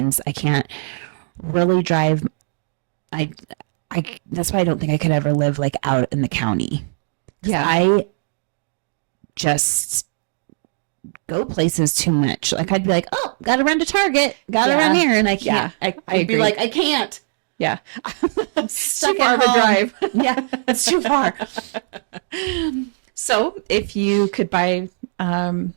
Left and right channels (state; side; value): silent; left; digital silence